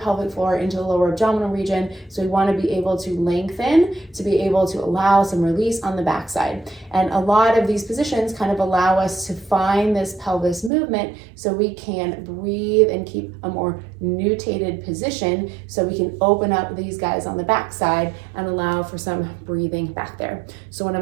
floor into the lower abdominal region. So we want to be able to lengthen to be able to allow some release on the backside. And a lot of these positions kind of allow us to find this pelvis movement so we can breathe and keep a more nutated position so we can open up these guys on the backside and allow for some breathing back there. So one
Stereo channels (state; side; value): drops out; left; at 10.7 s